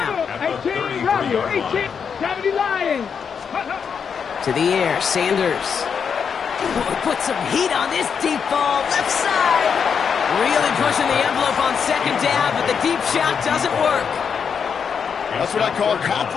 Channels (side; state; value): right; quieter; 6.7 dB